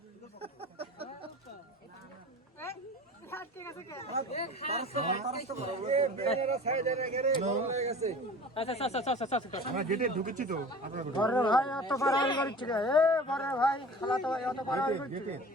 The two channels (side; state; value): both; normal; correlation 0.40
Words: আমরা গেটে ঢুকেছি তো বড় ভাই এত বাড়াবাড়ি করছে এ বড় ভাই খালাতো ভাই এত বাড়াবাড়ি করছে